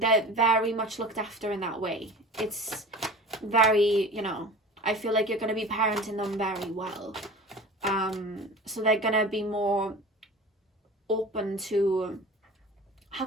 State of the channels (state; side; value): normal; both; correlation 0.38